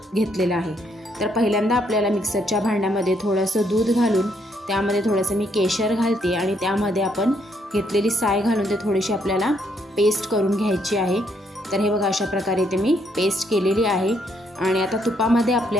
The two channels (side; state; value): both; normal; correlation 0.73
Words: घेतलेलं आहे। तर पहिल्यांदा आपल्याला मिक्सरच्या भांड्यामध्ये थोडंसं दूध घालून त्यामध्ये थोडंसं मी केशर घालते आणि त्यामध्ये आपण घेतलेली साय घालून ते थोडीशी आपल्याला पेस्ट करून घ्यायची आहे। तर हे बघा अशा प्रकारे इथे मी पेस्ट केलेली आहे। आणि आता तुपामध्ये